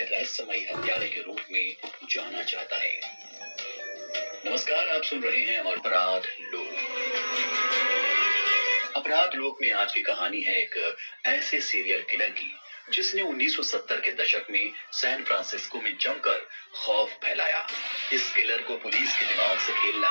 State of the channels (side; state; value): both; inverted; correlation -1.00